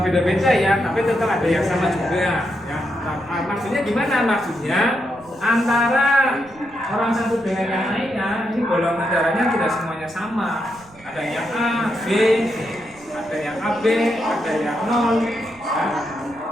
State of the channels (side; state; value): right; noise; rumble, 26 dB below the sound